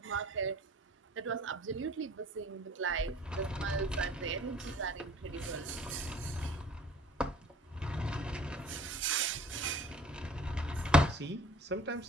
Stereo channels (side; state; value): both; normal; correlation 0.50